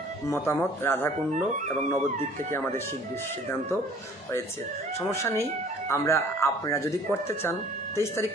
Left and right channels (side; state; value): both; normal; correlation 0.52